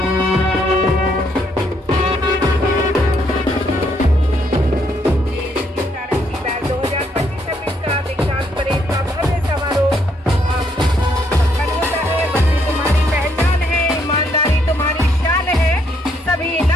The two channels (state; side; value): normal; both; correlation 0.72